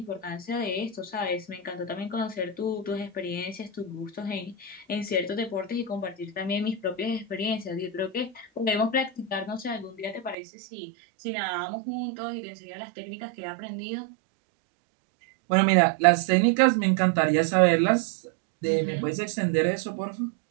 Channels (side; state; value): left; drops out; at 10.4 s